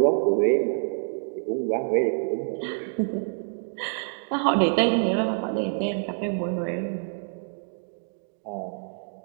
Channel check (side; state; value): left; silent; digital silence